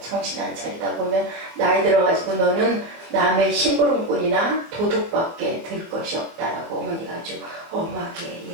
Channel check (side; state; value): left; late; 24 ms